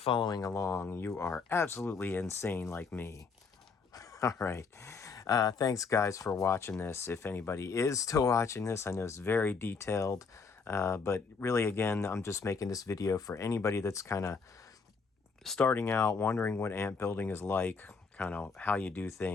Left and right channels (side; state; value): right; quieter; 5.0 dB